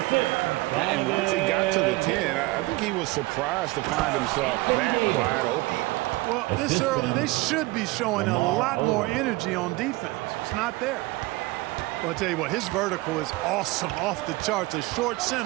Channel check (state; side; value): quieter; left; 21.3 dB